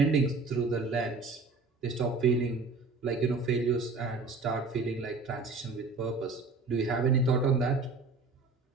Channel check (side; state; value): left; quieter; 3.9 dB